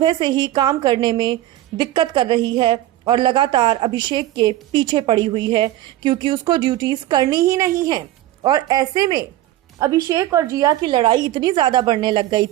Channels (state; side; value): quieter; left; 14.6 dB